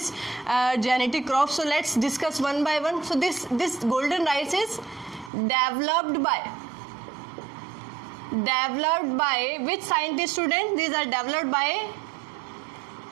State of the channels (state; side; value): drops out; left; at 5.3 s